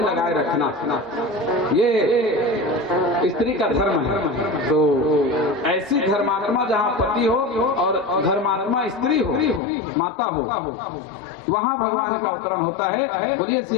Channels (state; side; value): drops out; right; at 9.6 s